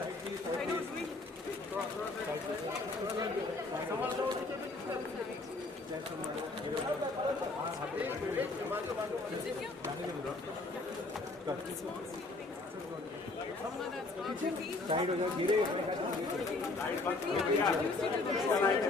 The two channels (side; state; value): right; quieter; 3.3 dB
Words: साइड हो जाओ धीरे